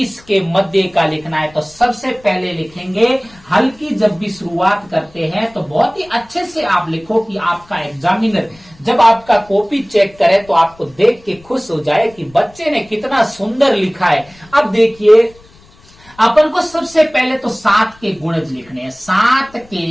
के मध्य का लिखना है। तो सबसे पहले लिखेंगे, हल की जब भी शुरुआत करते हैं तो बहुत ही अच्छे से आप लिखो कि आपका एग्जामिनर जब आपका कॉपी चेक करे तो आपको देख के खुश हो जाए कि बच्चे ने कितना सुंदर लिखा है। अब देखिए, अपन को सबसे पहले तो 7 के गुणज लिखने हैं। 7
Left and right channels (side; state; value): left; noise; rumble, 27 dB below the sound